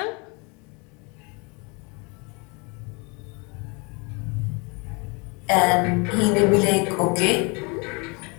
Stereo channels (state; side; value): quieter; right; 30.2 dB